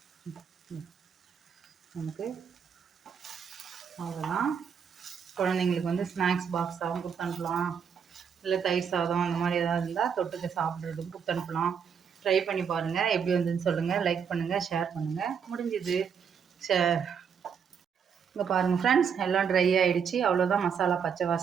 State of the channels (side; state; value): left; quieter; 7.0 dB